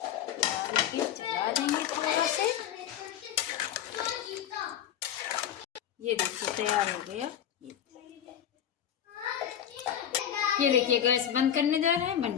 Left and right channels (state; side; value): quieter; right; 10.0 dB